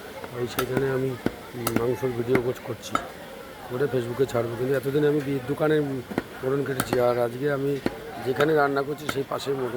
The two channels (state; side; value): identical; both; correlation 1.00